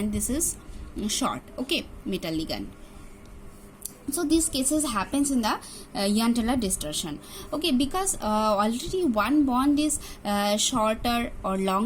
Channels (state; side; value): identical; both; correlation 1.00